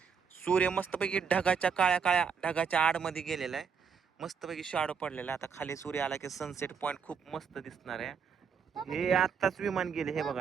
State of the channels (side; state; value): left; quieter; 6.4 dB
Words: सूर्य मस्तपैकी ढगाच्या काळ्या ढगाच्या आडमध्ये गेलेला आहे. मस्तपैकी शॅडो पडलेला आहे. आता खाली सूर्य आला की सनसेट पॉइंट खूप मस्त दिसणार आहे. हे आत्ताच विमान गेले. हे